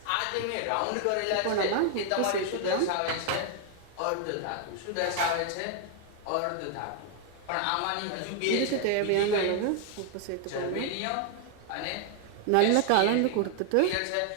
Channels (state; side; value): different; both; correlation 0.00